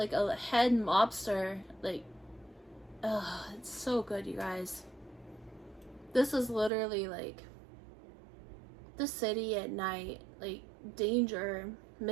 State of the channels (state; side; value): drops out; left; at 6.7 s